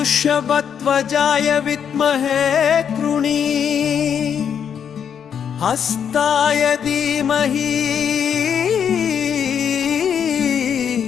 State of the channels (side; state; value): right; quieter; 8.0 dB